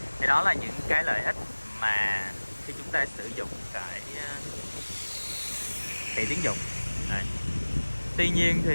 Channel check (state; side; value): inverted; both; correlation -1.00